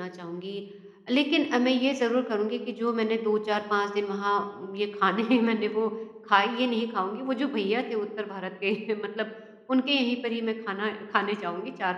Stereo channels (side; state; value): both; identical; correlation 1.00